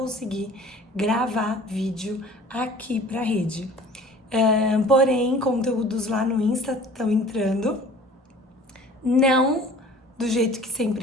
gravar vídeo aqui pra rede. Porém, conteúdos lá no Insta estão entrando. Não do jeito que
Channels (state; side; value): normal; both; correlation 0.47